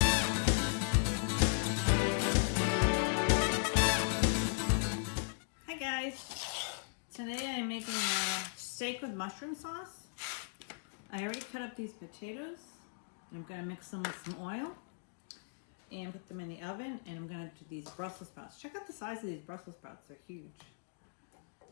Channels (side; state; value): right; silent; digital silence